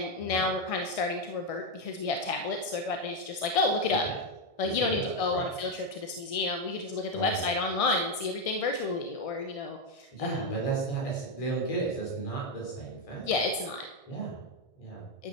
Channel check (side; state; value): right; late; 1.6 ms